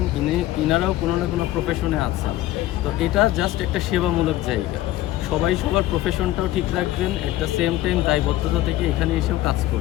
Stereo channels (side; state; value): right; quieter; 15.4 dB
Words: ইনারাও কোনো না কোনো প্রফেশনে আছেন। তো এটা জাস্ট একটা সেবামূলক জায়গা, সবাই সবার প্রফেশনটাও ঠিক রাখবেন, অ্যাট দ্য সেম টাইম দায়বদ্ধতা থেকে এখানে এসেও কাজ